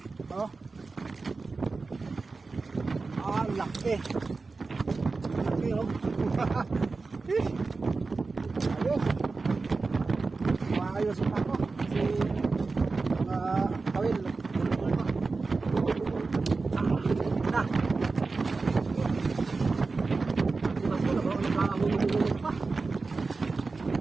Oh. Laki. Laki oh. ayusin ako. Kasi, kawil. Na.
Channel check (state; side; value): quieter; left; 4.0 dB